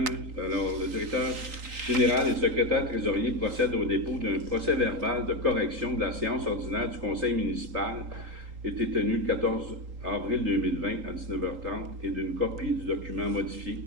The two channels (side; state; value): left; late; 3.8 ms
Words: Alors, le directeur général et le secrétaire trésorier procèdent au dépôt d'un procès-verbal de correction de la séance ordinaire du conseil municipal été tenue le 14 avril 2020 à 19h30 et d'une copie du document modifié